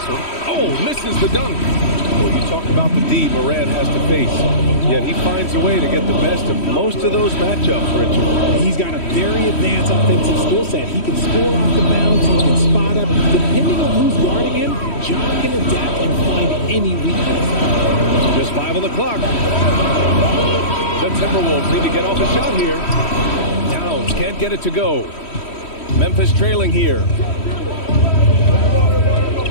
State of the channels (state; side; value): late; right; 3.1 ms